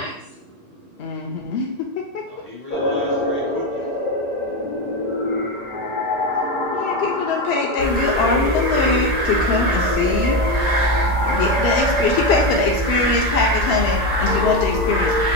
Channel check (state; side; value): late; left; 1.9 ms